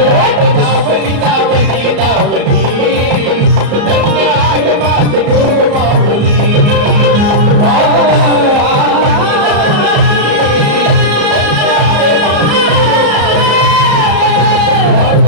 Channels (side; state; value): left; late; 34 ms